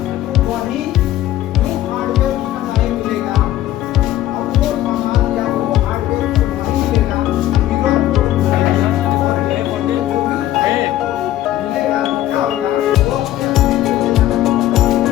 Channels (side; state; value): right; quieter; 13.7 dB